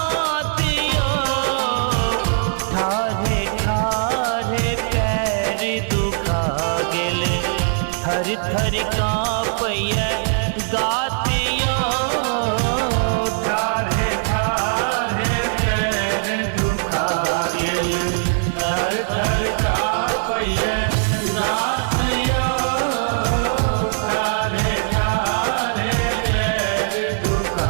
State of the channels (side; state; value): left; silent; digital silence